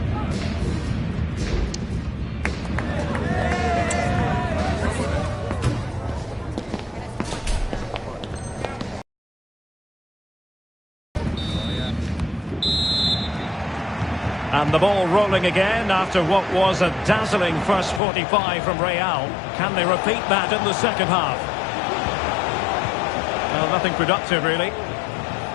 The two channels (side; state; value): right; drops out; at 18.0 s